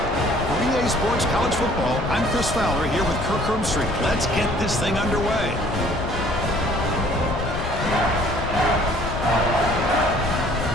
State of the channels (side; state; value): left; noise; rumble, 6 dB below the sound